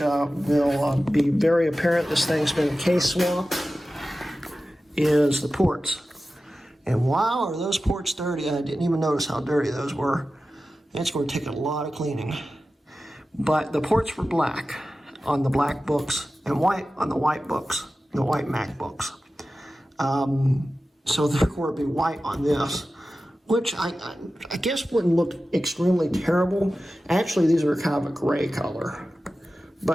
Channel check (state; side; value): normal; both; correlation 0.94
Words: be very apparent, this thing's been case swapped, is the ports. And wow, are those ports dirty? I didn't even notice how dirty those were. It's going to take a lot of cleaning. But the ports were black on the black books and white on the white books, the white MacBooks. So they're going to be white on this, which I guess wouldn't look extremely terrible. Actually, these are kind of a gray color.